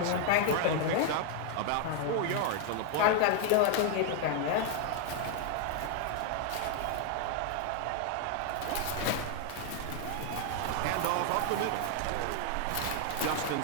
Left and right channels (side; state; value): both; different; correlation 0.00